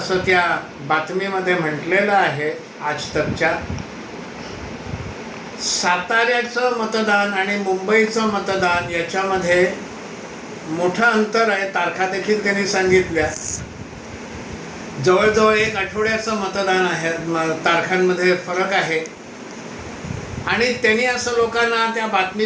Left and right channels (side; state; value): both; identical; correlation 1.00